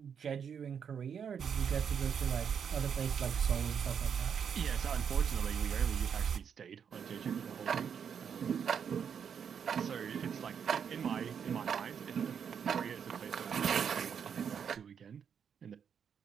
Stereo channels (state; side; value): quieter; left; 7.4 dB